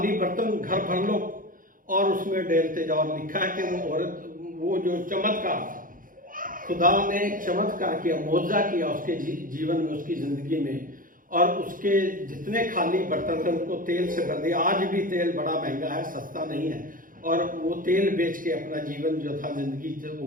बर्तन घर भर लो और उसमें डालते जाओ। लिखा है कि वो औरत, वो जो चमत्कार था, खुदा ने चमत्कार किया, मौजा किया उसके जीवन में, उसकी जिंदगी में, और उसके जितने खाली बर्तन थे उनको तेल से भर दिया। आज भी तेल बड़ा महंगा है, सस्ता नहीं है, और वो तेल बेच के अपना जीवन जो था, जिंदगी वो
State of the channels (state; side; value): late; left; 0.40 ms